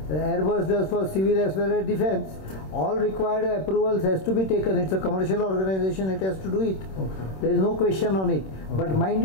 Airbus does for civil as well as defense. All required approvals has to be taken. It's a commercial organization, it has to do it. There is no question on it. But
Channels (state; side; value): late; right; 26 ms